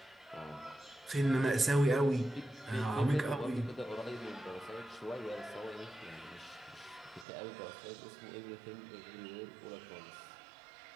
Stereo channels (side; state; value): left; drops out; at 7.2 s